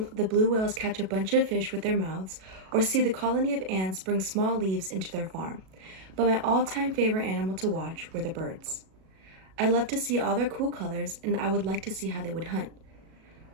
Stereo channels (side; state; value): left; late; 37 ms